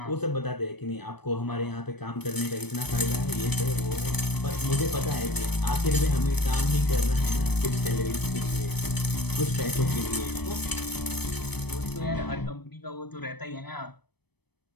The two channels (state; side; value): late; right; 0.98 ms